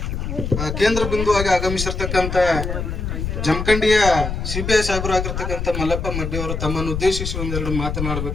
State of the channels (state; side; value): noise; left; rumble, 4 dB below the sound